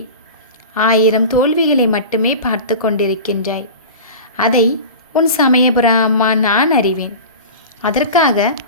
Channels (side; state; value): both; inverted; correlation -0.33